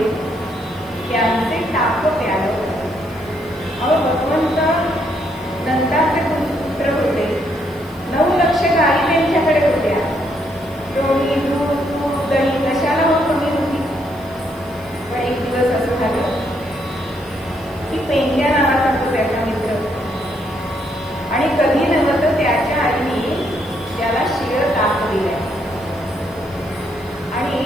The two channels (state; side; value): noise; right; hiss, 28 dB below the sound